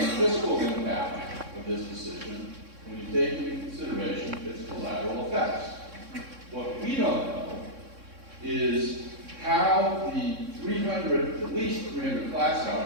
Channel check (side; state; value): left; late; 3.6 ms